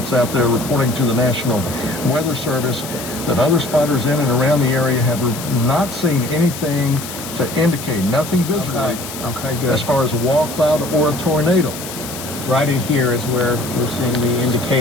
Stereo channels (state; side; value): noise; left; hiss, 10 dB below the sound